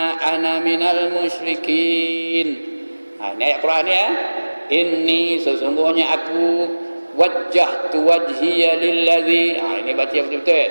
ana minal musyrikin. Ini ayat Quran ya. Inni sesungguhnya aku wajjahtu wajhiya lillazi. Ini baca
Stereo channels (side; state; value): both; inverted; correlation -1.00